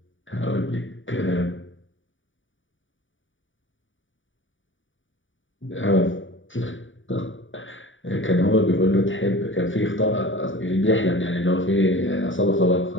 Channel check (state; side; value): late; right; 0.56 ms